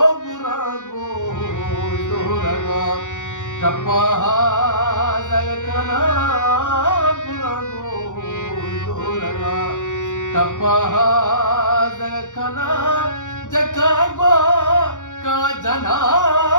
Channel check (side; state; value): right; late; 0.86 ms